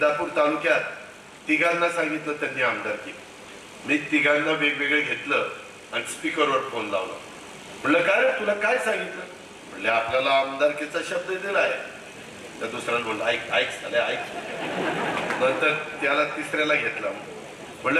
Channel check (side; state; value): both; identical; correlation 1.00